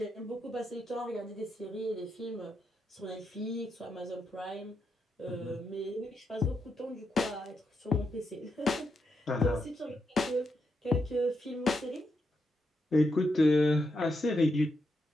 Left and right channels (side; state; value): both; normal; correlation 0.83